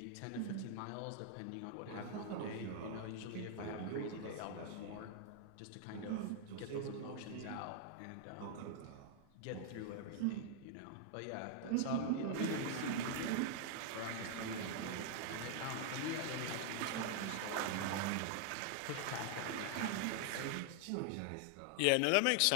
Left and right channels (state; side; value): different; both; correlation 0.00